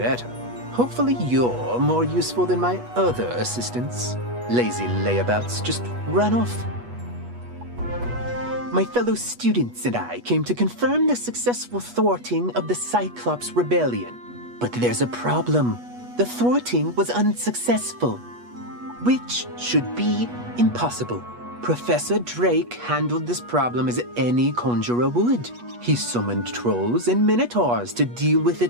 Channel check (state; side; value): late; left; 8.3 ms